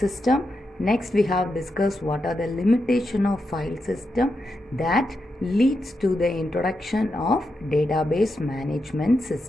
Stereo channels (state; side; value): normal; both; correlation 0.86